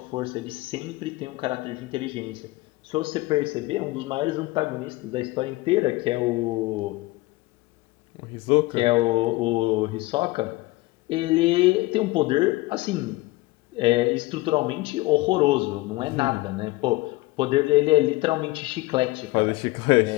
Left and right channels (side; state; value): right; quieter; 20.5 dB